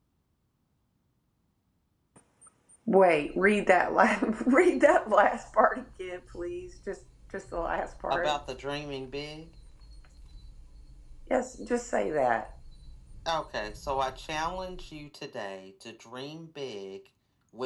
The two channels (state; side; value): identical; both; correlation 1.00